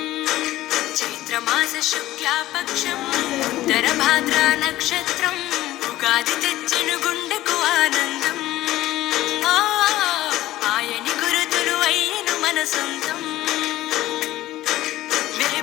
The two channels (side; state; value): right; quieter; 15.5 dB